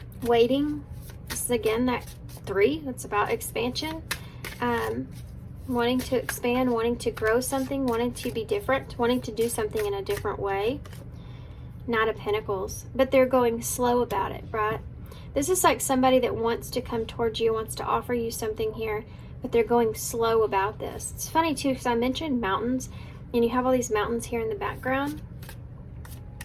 waiting. This is again that 3, that's about expansion, wanting to expand, wanting to grow something, wanting to be different, wanting to do something in a different way. Knight of Pentacles, but they're going slow about it, right? This is like somebody that wants to come towards you, wants to offer you something here, but they're going slow about this. It's funny too, because I mentioned mountains, and you have all these mountains here in the background.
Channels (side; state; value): both; identical; correlation 1.00